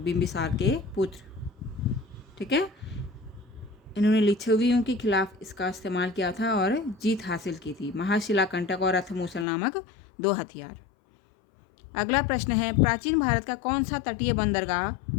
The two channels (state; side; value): drops out; right; at 9.5 s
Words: के पुत्र, ठीक है। इन्होंने लिच्छवियों के खिलाफ इसका इस्तेमाल किया था और जीत हासिल की थी। महाशिलाकंटक और रथमूसल नामक 2 हथियार। अगला प्रश्न है, प्राचीन भारत का कौन सा तटीय बंदरगाह